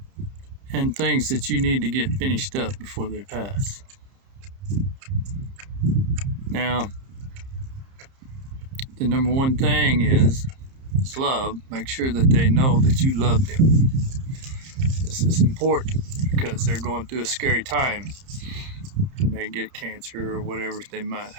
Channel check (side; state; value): left; late; 30 ms